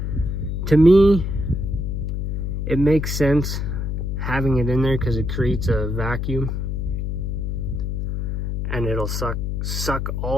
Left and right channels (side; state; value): left; noise; hum, 2 dB below the sound